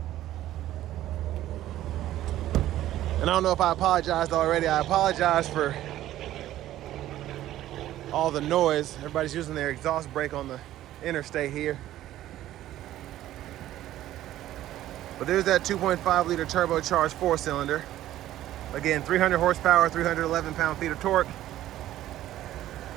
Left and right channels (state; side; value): quieter; left; 13.6 dB